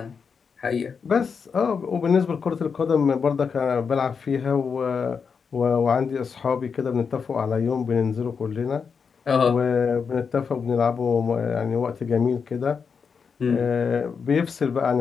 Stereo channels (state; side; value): quieter; right; 5.9 dB